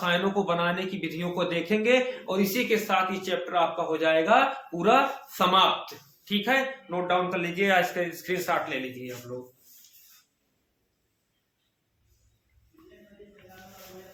को बनाने की विधियों को देखेंगे और इसी के साथ ये चैप्टर आपका हो जाएगा पूरा समाप्त। ठीक है, नोट डाउन कर लीजिए, इसका स्क्रीनशॉट ले लीजिए आप लोग।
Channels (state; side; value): identical; both; correlation 1.00